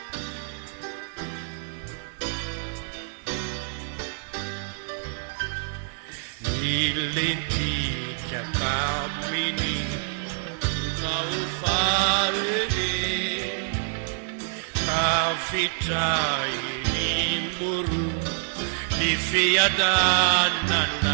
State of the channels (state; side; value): silent; left; digital silence